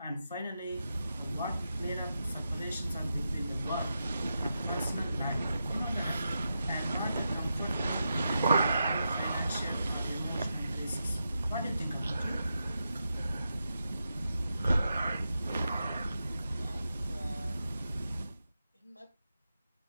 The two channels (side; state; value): both; inverted; correlation -0.88